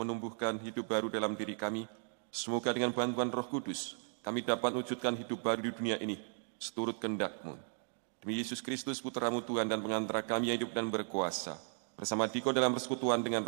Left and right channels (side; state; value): left; silent; 54 dB below the other